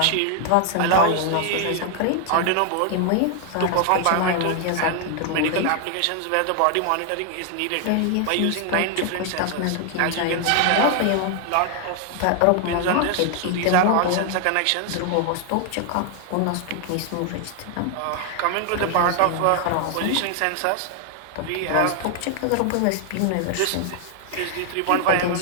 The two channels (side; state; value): both; different; correlation 0.00